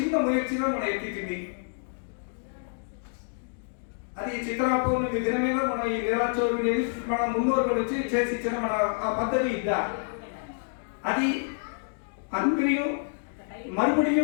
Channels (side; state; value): right; silent; digital silence